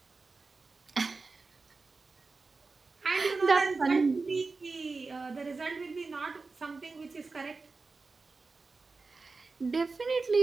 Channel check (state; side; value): quieter; left; 4.0 dB